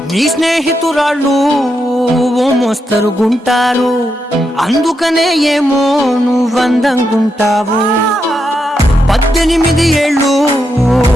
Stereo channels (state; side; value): normal; both; correlation 0.83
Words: నీ స్నేహితురాళ్ళు ఓ మోస్తరుగుంటారు, అందుకనే ఏమో నువ్వందంగుంటావు. 18 ఏళ్ళు